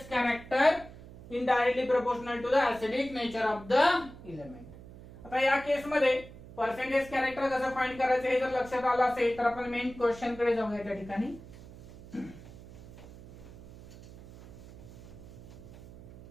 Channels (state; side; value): noise; right; hum, 17 dB below the sound